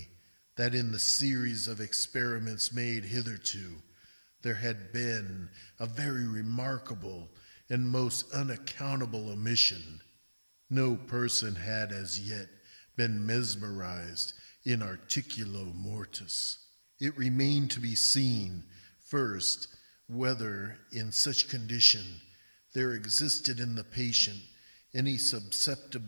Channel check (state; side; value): inverted; both; correlation -1.00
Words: that in the series of experiments made hitherto, there had been a very remarkable and most unaccountable omission. No person had as yet been mesmerized in articulo mortis. It remained to be seen, first, whether in such condition there existed in the patient any